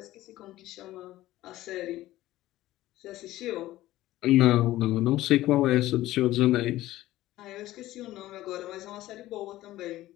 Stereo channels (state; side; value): quieter; right; 15.7 dB